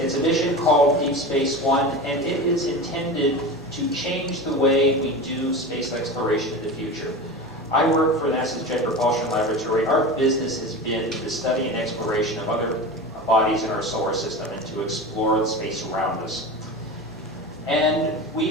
a mission called Deep Space One, and it is intended to change the way we do space exploration in the future. I work for NASA's Jet Propulsion Laboratory. Our business has been the study and exploration of other bodies in our solar system and to explore the space around us. And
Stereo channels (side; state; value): left; noise; hum, 26 dB below the sound